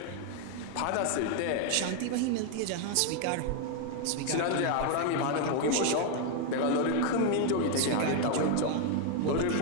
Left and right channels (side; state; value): both; different; correlation 0.00